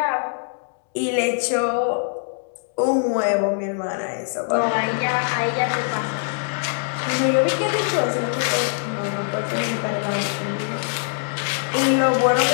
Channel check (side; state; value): right; silent; digital silence